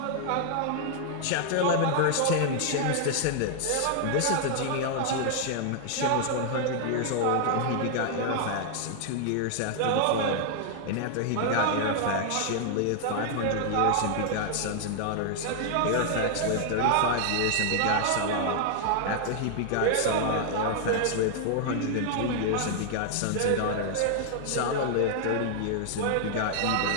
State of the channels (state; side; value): different; both; correlation -0.01